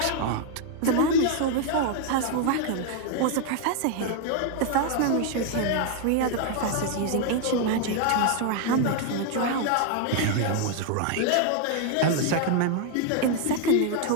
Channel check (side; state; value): both; different; correlation 0.00